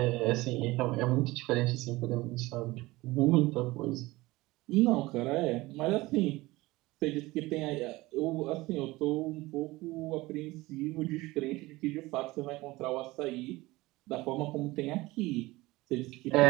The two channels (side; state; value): left; quieter; 20.1 dB